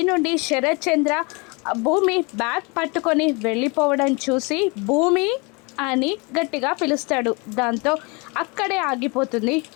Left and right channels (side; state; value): right; quieter; 29.3 dB